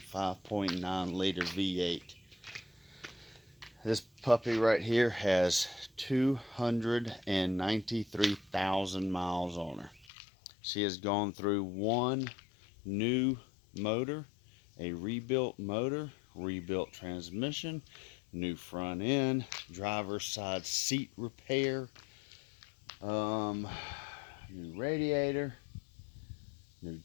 5.9 liter V8. This puppy right here has 293,000 miles on her. She has gone through one new motor, a rebuilt motor, rebuilt transmission, new front end, driver's side seat repair, new radiator, new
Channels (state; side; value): drops out; right; at 10.1 s